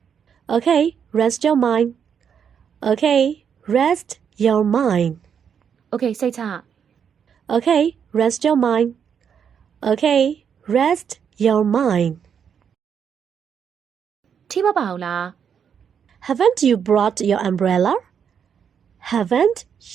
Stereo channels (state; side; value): quieter; left; 7.6 dB